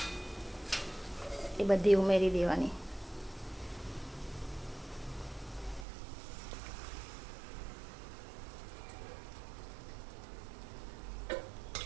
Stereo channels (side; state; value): left; drops out; at 5.9 s